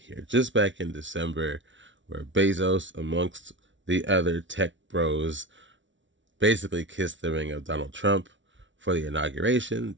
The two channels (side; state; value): left; late; 0.55 ms